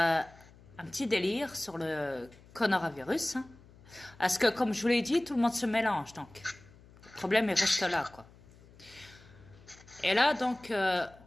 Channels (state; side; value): noise; left; hum, 24 dB below the sound